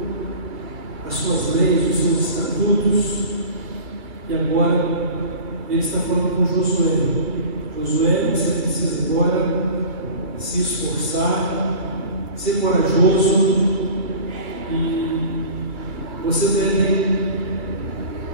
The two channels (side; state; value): left; late; 2.1 ms